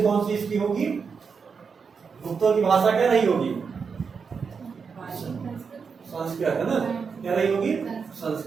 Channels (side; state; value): left; quieter; 5.7 dB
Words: कौन सी इसकी होगी? गुप्तों की भाषा क्या रही होगी? संस्कृत, है ना? क्या रही होगी?